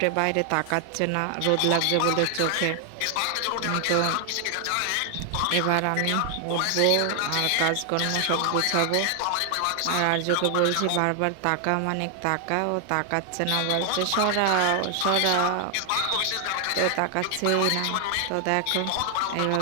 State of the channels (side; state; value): both; different; correlation 0.00